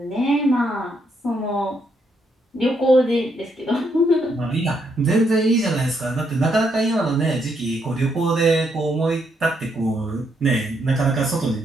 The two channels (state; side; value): normal; both; correlation 0.76